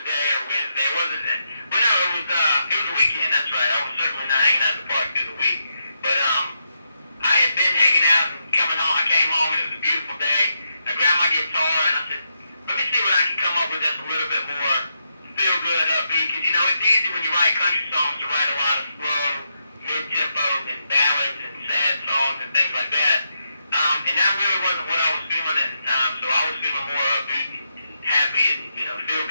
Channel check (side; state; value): both; inverted; correlation -0.82